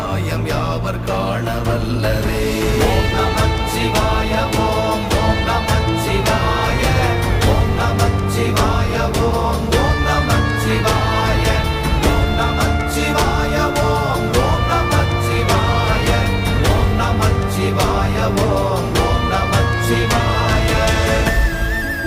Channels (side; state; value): both; identical; correlation 1.00